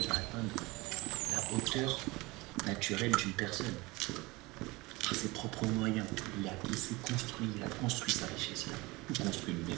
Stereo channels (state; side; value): quieter; left; 22.8 dB